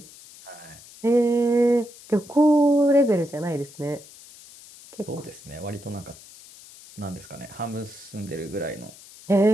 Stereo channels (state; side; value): noise; left; hiss, 20 dB below the sound